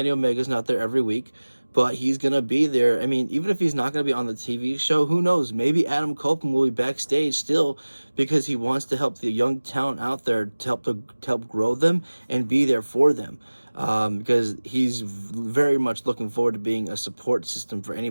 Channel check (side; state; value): both; inverted; correlation -1.00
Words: Omega's not there every week. But he's going to be there. I mean, even if he's not going to be on the TV show, who knows? Maybe Adam Copeland will be backstage still, because he wants to help the young talent out there, to help grow them and be there for them. Because he's very much looking forward to being a support system for